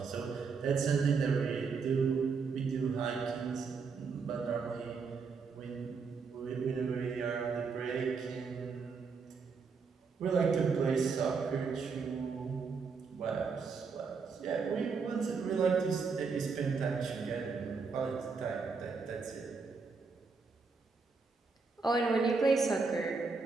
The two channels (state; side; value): quieter; left; 5.0 dB